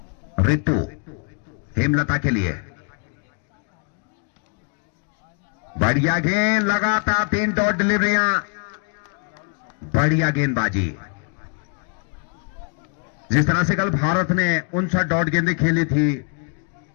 ऋतु हेमलता के लिए बढ़िया गेंद, लगातार 3 डॉट डिलीवरियां, बढ़िया गेंदबाजी। जिस तरह से कल भारत ने 59 डॉट गेंदें खेली थी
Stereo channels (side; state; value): right; quieter; 39.3 dB